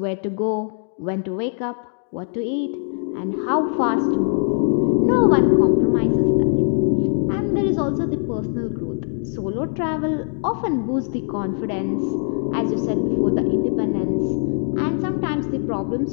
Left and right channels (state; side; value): silent; right; 56 dB below the other